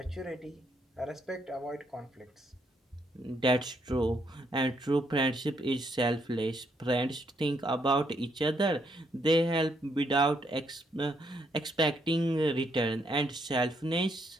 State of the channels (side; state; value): both; normal; correlation 0.74